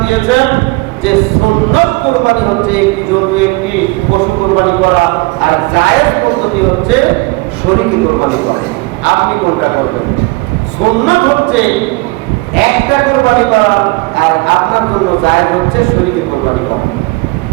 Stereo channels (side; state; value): left; quieter; 24.8 dB